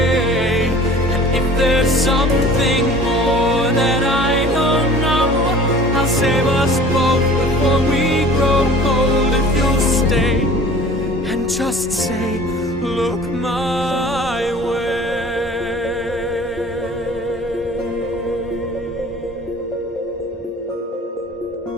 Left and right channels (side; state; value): both; normal; correlation 0.46